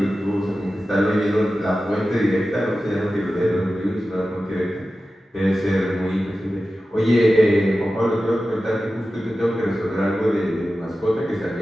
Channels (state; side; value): normal; both; correlation 0.94